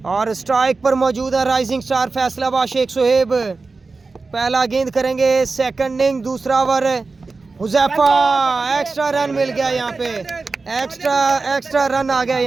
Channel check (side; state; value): left; quieter; 4.0 dB